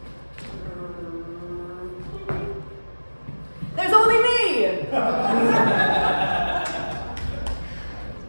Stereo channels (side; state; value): both; inverted; correlation -1.00